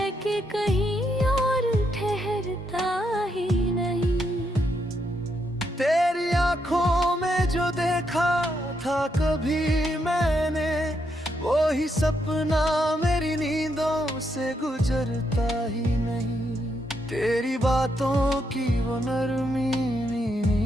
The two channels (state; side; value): normal; both; correlation 0.79